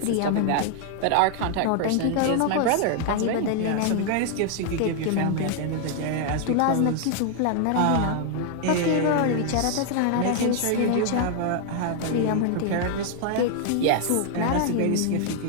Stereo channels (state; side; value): different; both; correlation 0.00